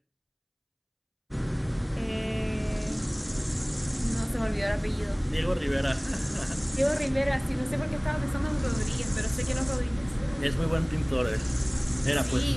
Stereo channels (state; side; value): identical; both; correlation 1.00